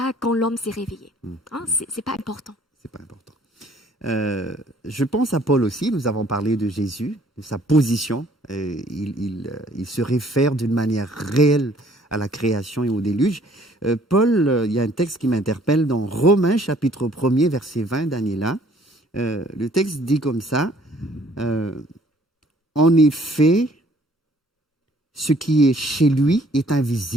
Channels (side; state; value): both; normal; correlation 0.59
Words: quand l'homme s'est réveillé. C'est pas important. C'est pas important. Je pense à Paul aussi. Nous avons parlé de Jésus, de sa position. Il se réfère d'une manière réelle à la création et au déluge. Paul, il y a un texte qui m'interpelle dans Romains chapitre 1er, verset 20, Daniela. Le texte dit comme ça, en effet, ce qui est chez lui est